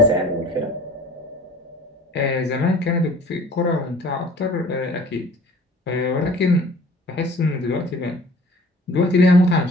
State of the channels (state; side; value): normal; both; correlation 0.49